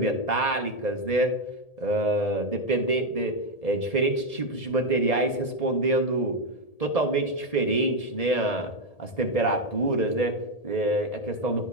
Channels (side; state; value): right; late; 1.8 ms